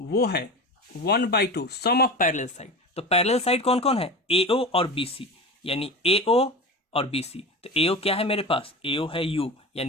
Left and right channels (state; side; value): normal; both; correlation 0.29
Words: है 1/2 सम ऑफ पैरेलल साइड। तो पैरेलल साइड कौन कौन है, AO और BC, यानी AO और BC। तो AO क्या है मेरे पास, AO है U,